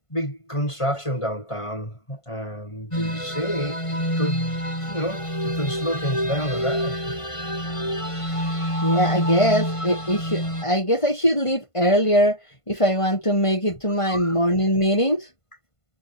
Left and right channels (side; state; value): right; late; 1.5 ms